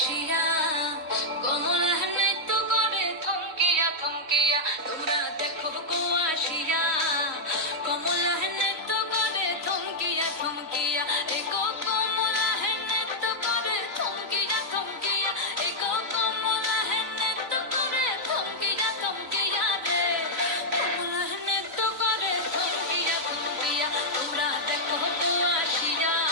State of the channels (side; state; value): left; late; 3.9 ms